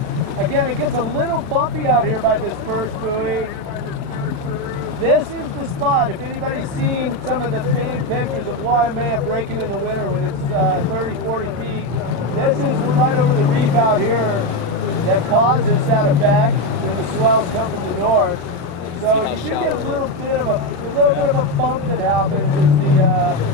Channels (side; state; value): left; late; 35 ms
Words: Again, it gets a little bumpy out here by this first buoy. This is the spot. If anybody's seen some of the famed pictures of Waimea breaking in the winter when it's 30, 40 feet, this is right over the reef out here that causes that effect when the swells come from the north. So you should get a little bit of a bump that happens as